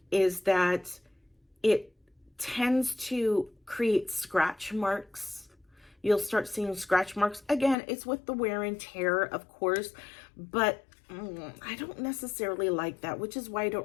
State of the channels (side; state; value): right; drops out; at 7.8 s